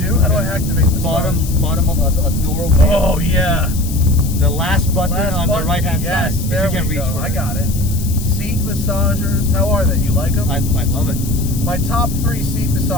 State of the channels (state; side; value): noise; left; hiss, 12 dB below the sound